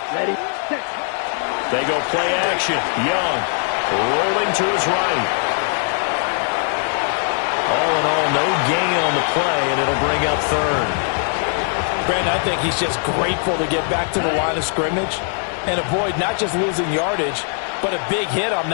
Ready, set. They go play action. Young rolling to his right. All in all, no gain on the play, and it'll bring up 3rd. Brandon, I think he's just grateful to get back to the line of scrimmage and avoid not just losing yardage, but a big hit on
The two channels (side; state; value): right; silent; 55 dB below the other